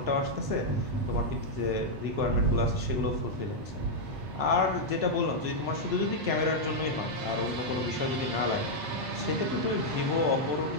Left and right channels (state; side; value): late; left; 8.5 ms